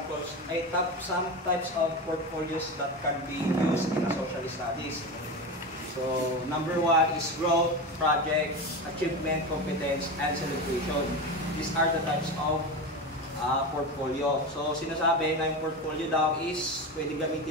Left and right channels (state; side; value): normal; both; correlation 0.22